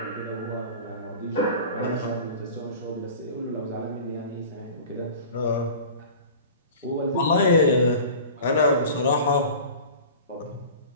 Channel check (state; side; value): inverted; both; correlation -0.39